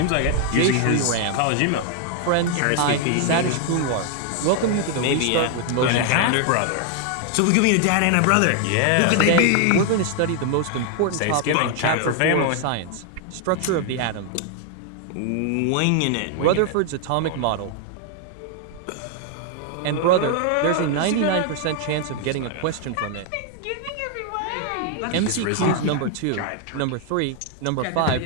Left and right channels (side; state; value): both; different; correlation 0.00